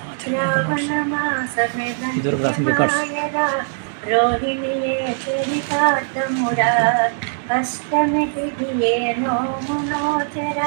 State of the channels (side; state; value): left; silent; 65 dB below the other